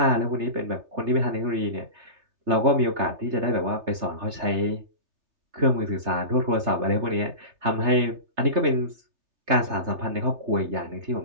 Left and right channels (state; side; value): late; left; 3.3 ms